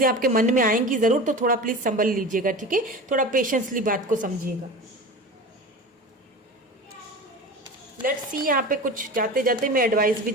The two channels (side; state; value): both; normal; correlation 0.32